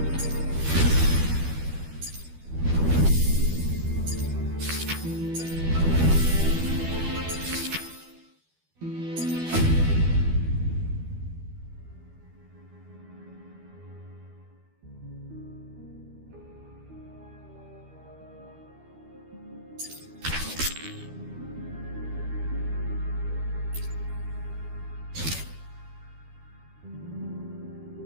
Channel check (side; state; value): left; late; 12 ms